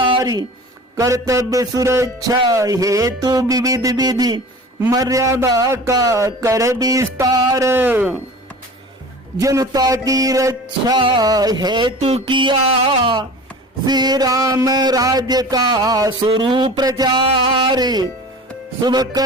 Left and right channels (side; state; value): both; normal; correlation 0.39